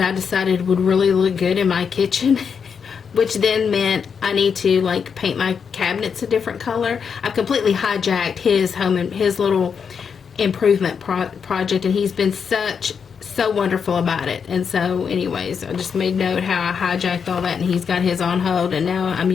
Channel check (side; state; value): right; quieter; 6.5 dB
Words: decided would really look good in my kitchen, which then meant I need to paint my cabinets a different color. I've completely hijacked his little improvement project, and he's been so wonderful about it. And so anyways, I just made note how I hijacked all that, and he's got his on hold, and now I'm